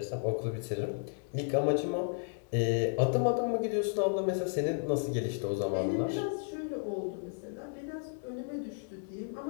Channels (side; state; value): right; silent; digital silence